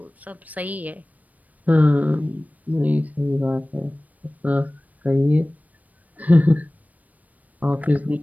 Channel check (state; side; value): late; left; 0.075 ms